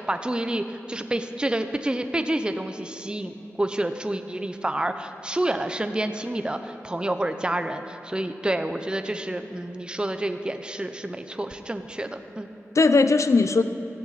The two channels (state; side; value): normal; both; correlation 0.87